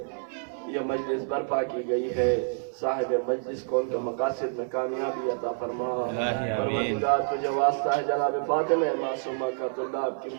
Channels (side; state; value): left; silent; 58 dB below the other